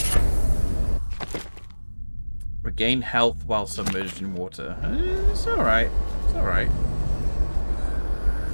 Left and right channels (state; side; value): inverted; both; correlation -1.00